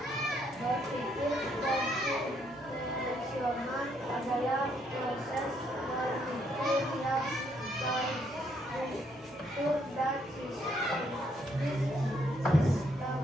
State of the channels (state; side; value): normal; both; correlation 0.72